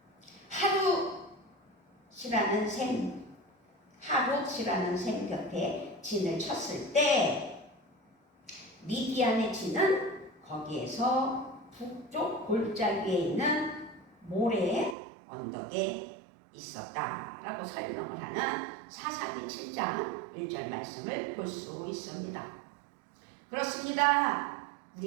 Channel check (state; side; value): drops out; left; at 15.0 s